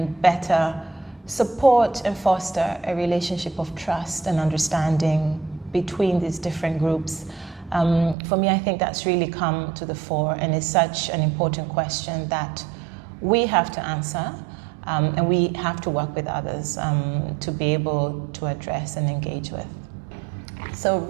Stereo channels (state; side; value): drops out; left; at 8.2 s